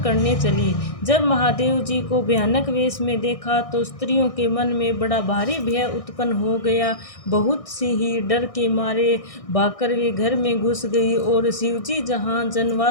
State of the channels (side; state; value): right; late; 1.6 ms